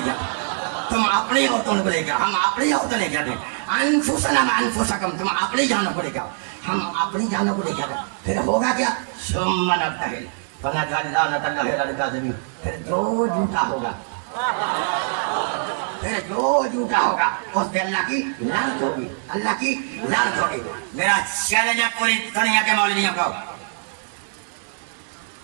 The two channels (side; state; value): left; silent; digital silence